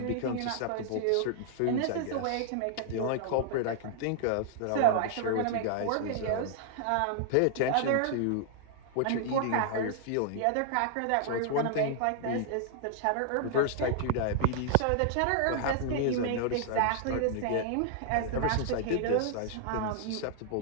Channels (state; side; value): different; both; correlation -0.01